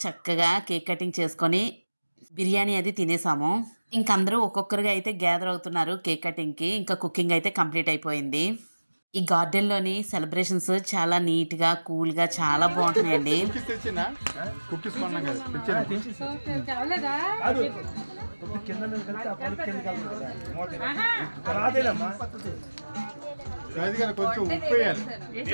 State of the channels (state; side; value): inverted; both; correlation -1.00